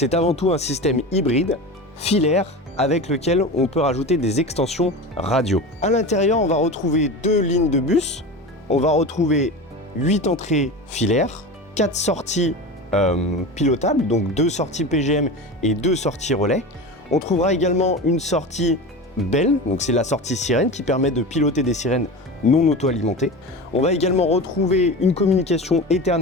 avant tout un système hybride, filaire, avec lequel on peut rajouter des extensions radio. À l'intérieur, on va retrouver 2 lignes de bus, on va retrouver 8 entrées filaires, 4 sorties pilotables, donc 2 sorties PGM et 2 sorties relais. On trouvera également une sortie Bell, donc c'est la sortie sirène qui permet de piloter des sirènes non auto-alimentées. On va également retrouver une communication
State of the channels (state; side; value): normal; both; correlation 0.28